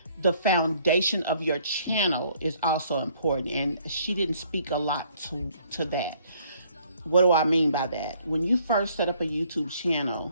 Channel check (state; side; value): inverted; both; correlation -0.63